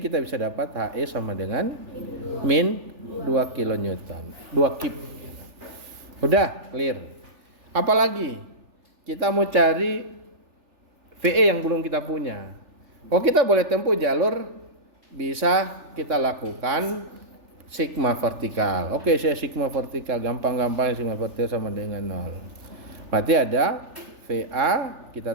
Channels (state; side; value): late; left; 3.4 ms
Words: kita bisa dapat HE sama dengan min 2 kilonewton, 2 kip. Udah clear. Apalagi kita mau cari VE yang belum kita punya. Oh, kita boleh tempuh jalur, bisa kita lakukan sigma vertikal. Oke, saya sigma vertikal, gampang-gampang sigma vertikal sama dengan 0. Berarti ada VA,